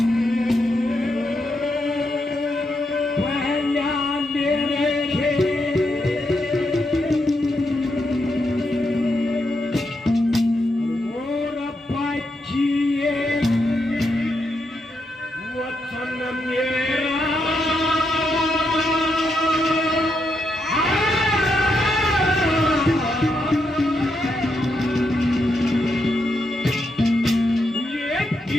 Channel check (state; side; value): normal; both; correlation 0.82